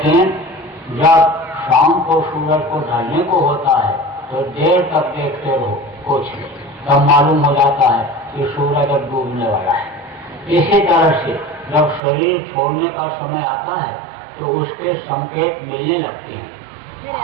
जब शाम को सूरज को ढलने को होता है तो देर तक देखते रहो कुछ नहीं, तब मालूम हो जाता है कि सूरज अब डूबने वाला है। इसी तरह से जब शरीर छोड़ने का समय आता है तो उसके संकेत मिलने लगते हैं।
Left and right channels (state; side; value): drops out; left; at 12.0 s